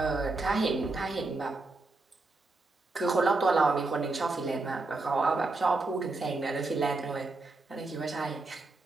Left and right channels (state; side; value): quieter; left; 3.3 dB